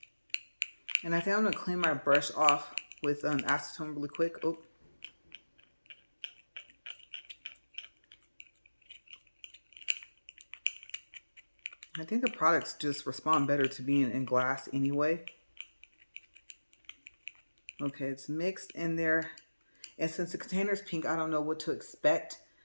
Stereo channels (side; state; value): both; inverted; correlation -1.00